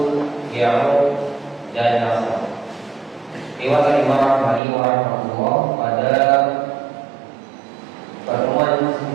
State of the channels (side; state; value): left; drops out; at 4.6 s